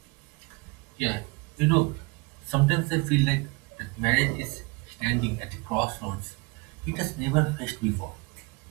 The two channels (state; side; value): quieter; left; 27.1 dB